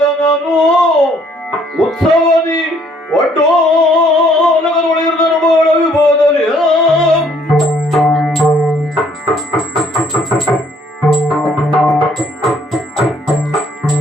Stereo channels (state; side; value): normal; both; correlation 0.63